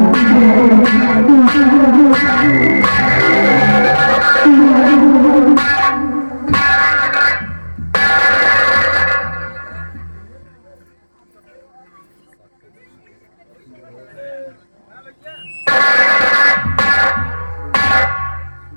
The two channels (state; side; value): inverted; both; correlation -1.00